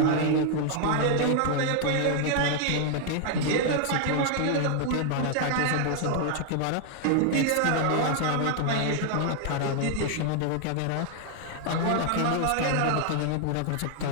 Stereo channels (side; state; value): both; different; correlation 0.00